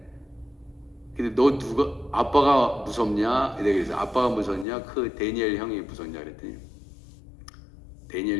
근데 너 아빠가 무섭냐? 내가 그래서 아빠가 무섭냐? 그 데니엘 형이 무섭냐? 그랬더니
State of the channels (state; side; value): drops out; right; at 4.7 s